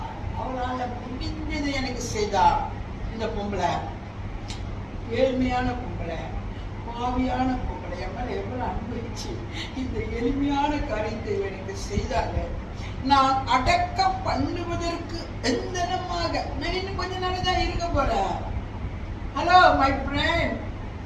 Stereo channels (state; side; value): identical; both; correlation 1.00